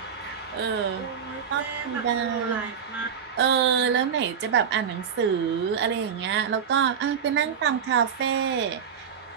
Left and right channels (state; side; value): quieter; left; 7.3 dB